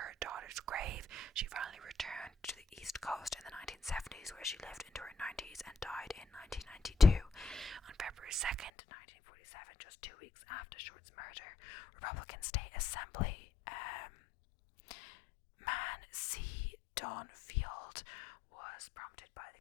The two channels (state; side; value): drops out; right; at 8.7 s